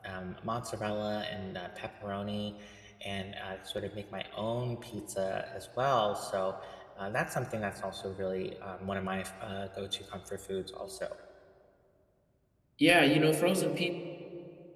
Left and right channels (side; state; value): both; identical; correlation 1.00